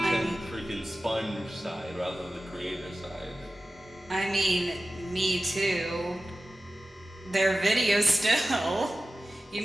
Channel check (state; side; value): normal; both; correlation 0.95